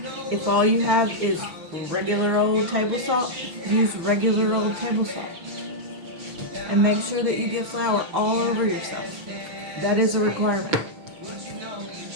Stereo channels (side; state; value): left; late; 6.0 ms